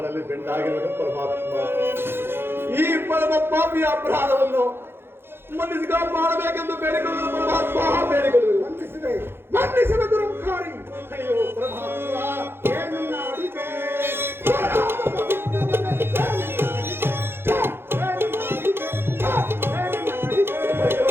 ಬೆಂಡಾಗಿರುವ ಪರಮಾತ್ಮ ಈ ಪರಮ ಪಾಪಿಯ ಅಪರಾಧವನ್ನು ಮನ್ನಿಸಿ ಮಾಡಬೇಕೆಂದು ಬೇಡಿಕೊಳ್ಳುವುದು ಪರಮಾತ್ಮ, ಬೇಡಿಕೊಳ್ಳುವುದು. ಮನ್ನಿಸಿದ ದುರಂಕಾರಿ. ಅಯ್ಯೋ ಪರಮಾತ್ಮ, ಏನನ್ನ ಅಡಿಗೆ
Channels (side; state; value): left; late; 0.11 ms